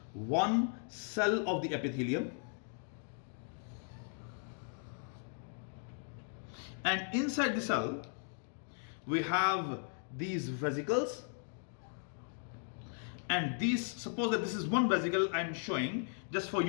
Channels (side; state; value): right; silent; 53 dB below the other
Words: one cell of the epithelium, and inside the cell, we have these vesicles. And these, suppose that this is one vesicle I'm showing just for